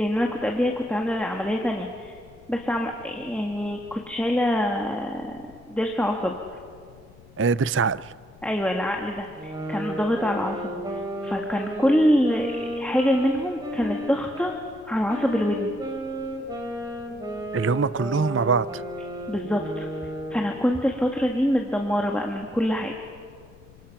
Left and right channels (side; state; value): left; noise; rumble, 24 dB below the sound